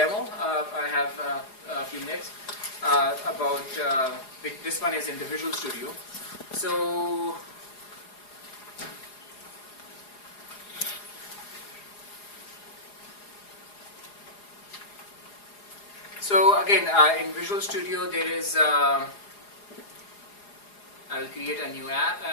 I have a few minutes. About this one is in the Visual Studio. So again, in Visual Studio there is I will create a new app,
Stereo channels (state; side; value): late; right; 4.8 ms